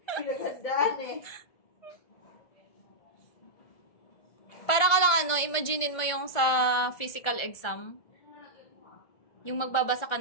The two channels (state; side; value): late; right; 1.5 ms